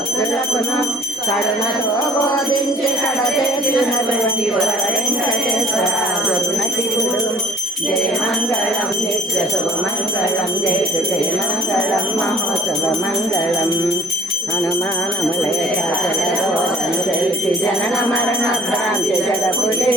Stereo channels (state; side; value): normal; both; correlation 0.55